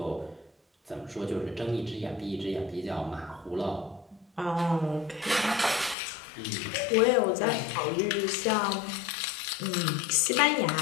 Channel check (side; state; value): right; drops out; at 6.0 s